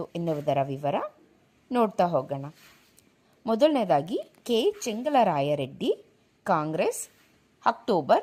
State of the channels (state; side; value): identical; both; correlation 1.00